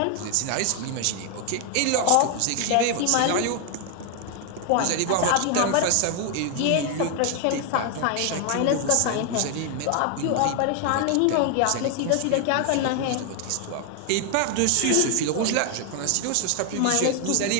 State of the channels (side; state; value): both; different; correlation 0.00